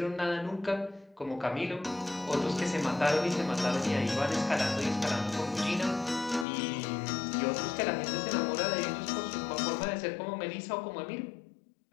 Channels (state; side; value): drops out; right; at 6.5 s